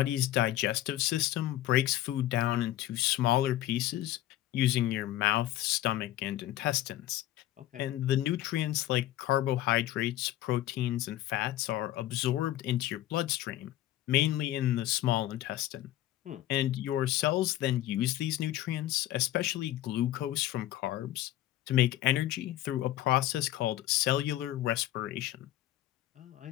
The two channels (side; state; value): right; quieter; 14.0 dB